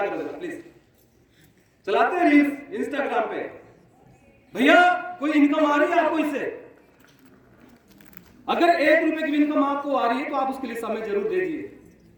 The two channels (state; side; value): identical; both; correlation 1.00